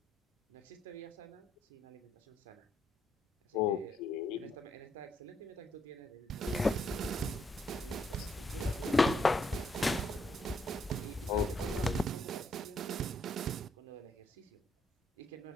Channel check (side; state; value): both; normal; correlation 0.74